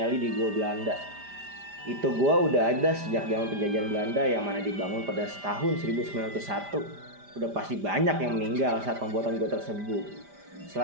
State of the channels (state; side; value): late; left; 5.0 ms